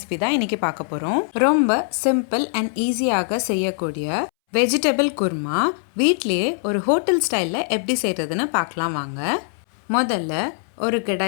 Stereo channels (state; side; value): silent; right; 64 dB below the other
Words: தான் இன்றைக்கி பார்க்க போகிறோம். ரொம்ப சிம்பிள் அண்ட் ஈஸியாக செய்யக்கூடிய வெஜிடபிள் குருமா வீட்லேயே ஒரு ஹோட்டல் ஸ்டைலில் எப்படி செய்கிறதுன்னு பார்க்கலாம் வாங்க. முதல்ல ஒரு